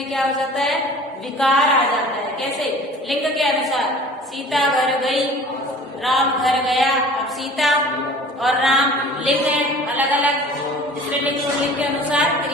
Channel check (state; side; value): normal; both; correlation 0.45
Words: क्या हो जाता है? विकार आ जाता है। कैसे? लिंग के अनुसार। सीता घर गई, राम घर गया। अब सीता और राम लिंग है अलग अलग, इसलिए लिंग और लिंग के अनुसार